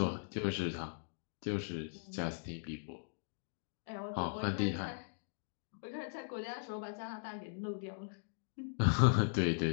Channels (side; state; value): right; silent; digital silence